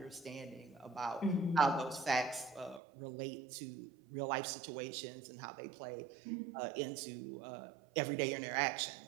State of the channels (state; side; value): drops out; left; at 2.8 s